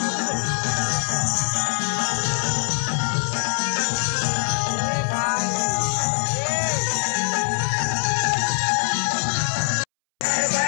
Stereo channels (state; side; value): silent; right; 64 dB below the other